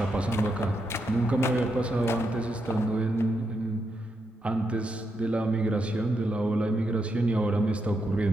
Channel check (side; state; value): both; normal; correlation 0.82